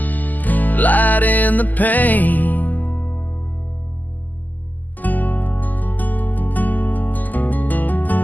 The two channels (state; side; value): late; right; 0.083 ms